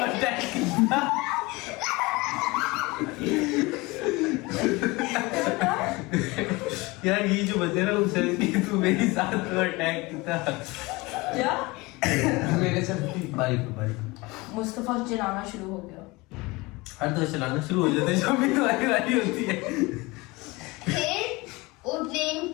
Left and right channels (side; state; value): right; quieter; 23.4 dB